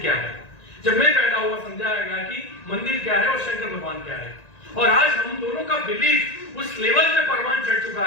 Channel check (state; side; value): late; right; 1.9 ms